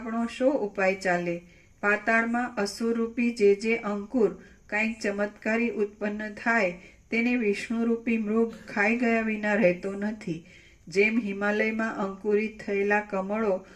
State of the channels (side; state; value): both; identical; correlation 1.00